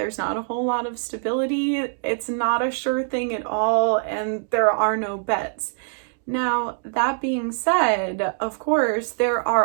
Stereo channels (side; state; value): left; silent; digital silence